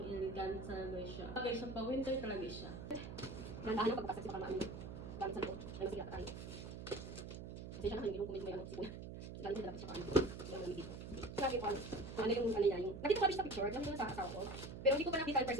talaga siya. Talaga siya, pang-winter talaga siya. Gandahan yung pagpasag sa pang-ano. Gamit sa loob. May masigat tayo. Kasi siya naman yung kumit may sipon. Galing sa dapat sa pang-ano. Yung lamig dito. Sabi ko ano yung niya yung... Nakita ko sa picture. Nakita ko sa asawa ko. Pero hindi ko pa nakita in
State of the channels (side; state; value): right; noise; hum, 9 dB below the sound